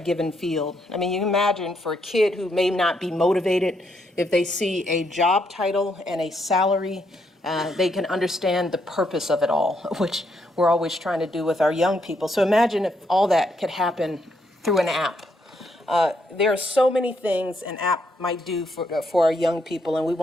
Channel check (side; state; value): both; normal; correlation 0.76